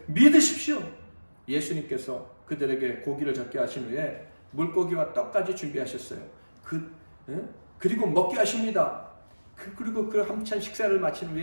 믿으십시오. 예수님께서 그들에게 고기를 잡게 하신 후에 물고기와 떡까지 준비하셨어요. 그리고 먹게 하십니다. 그리고 그 한참 식사를 마친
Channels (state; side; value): inverted; both; correlation -1.00